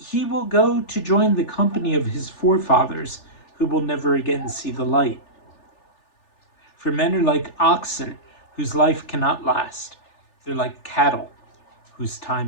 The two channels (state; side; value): late; right; 3.4 ms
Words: will go to join the company of his forefathers, who will never again see the light. For men are like oxen whose life cannot last. They're like cattle whose